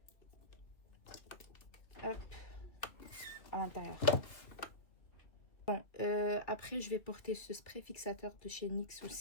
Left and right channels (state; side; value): late; right; 2.4 ms